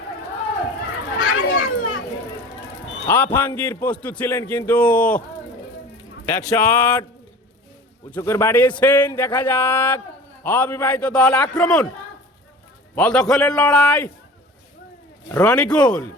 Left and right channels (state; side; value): normal; both; correlation 0.40